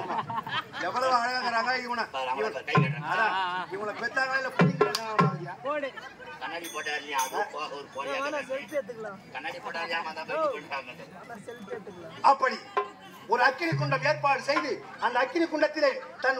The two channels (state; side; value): identical; both; correlation 1.00